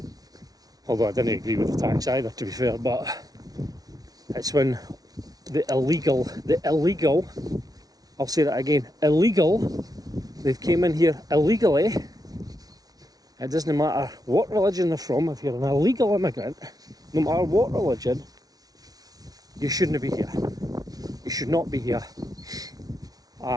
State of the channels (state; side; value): late; left; 0.18 ms